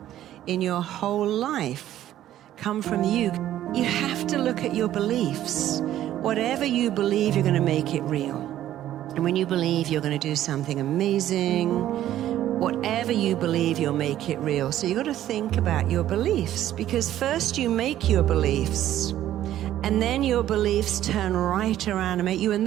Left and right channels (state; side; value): quieter; left; 12.6 dB